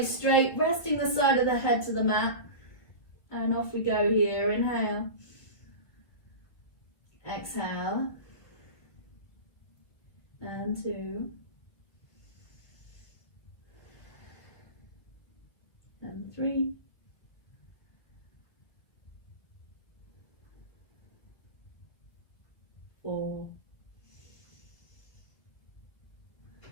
straight, resting the side of the head to the mat. And off we go here. Inhale. Exhale. And 2. And 3. Four.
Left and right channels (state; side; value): late; right; 2.0 ms